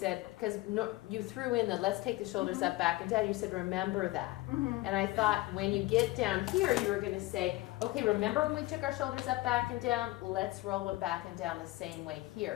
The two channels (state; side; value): quieter; right; 19.4 dB